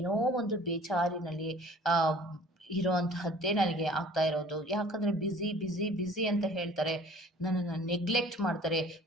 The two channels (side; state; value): both; normal; correlation 0.50